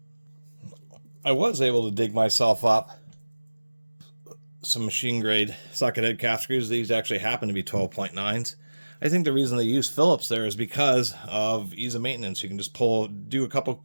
I was able to dig myself up some machine grade socket head cap screws. These actually happen to be 12.9s. I think the reason they use Phillips there is because of ease of maintenance. You can just do a couple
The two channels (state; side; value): inverted; both; correlation -1.00